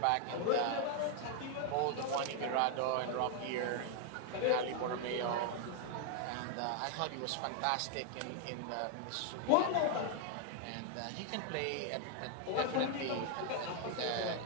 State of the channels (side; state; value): both; different; correlation 0.00